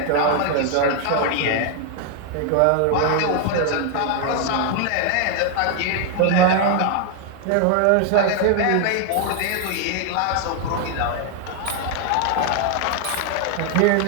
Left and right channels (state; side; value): different; both; correlation 0.00